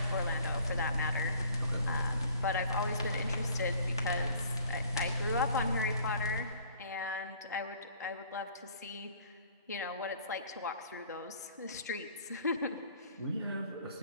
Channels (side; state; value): both; inverted; correlation -0.55